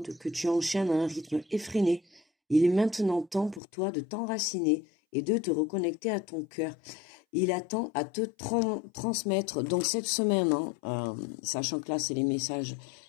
que tu enchaînes à un rythme effréné. Il est maintenant temps pour toi de t'enraciner et de te reconnecter à ton cœur. Il attend à te transmettre. Donc cette semaine, sachant que là c'est les messages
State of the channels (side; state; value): right; drops out; at 3.6 s